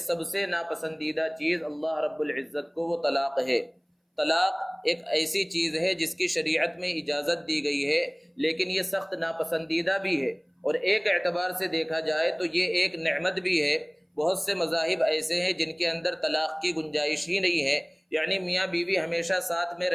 سب سے ناپسندیدہ چیز اللہ رب العزت کو وہ طلاق ہے۔ طلاق ایک ایسی چیز ہے جس کی شریعت میں اجازت دی گئی ہے لیکن یہ سخت ناپسندیدہ بھی ہے، اور ایک اعتبار سے دیکھا جائے تو یہ ایک نعمت بھی ہے۔ بہت سے مذاہب ایسے ہیں جن کے اندر طلاق کی گنجائش ہی نہیں ہے، یعنی میاں بیوی ہمیشہ ساتھ میں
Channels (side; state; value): both; identical; correlation 1.00